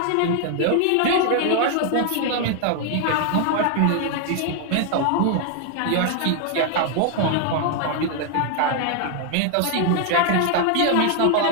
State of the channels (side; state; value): both; different; correlation 0.00